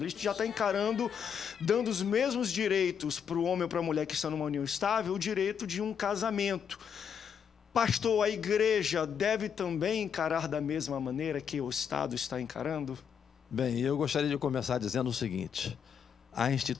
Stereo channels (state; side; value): quieter; right; 7.5 dB